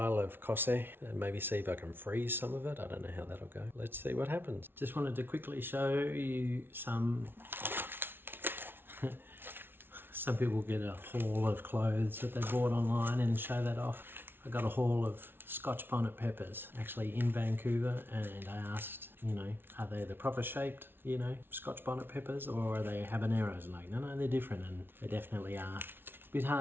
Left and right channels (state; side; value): late; left; 0.11 ms